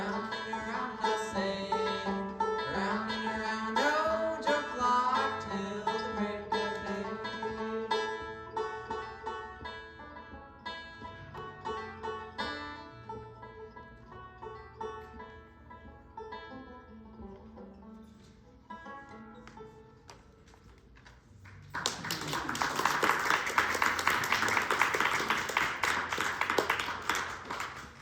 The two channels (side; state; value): both; identical; correlation 1.00